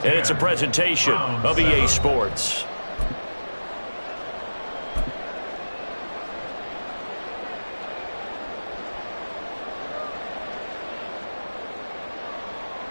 and it's a presentation of EA Sports.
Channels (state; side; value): inverted; both; correlation -1.00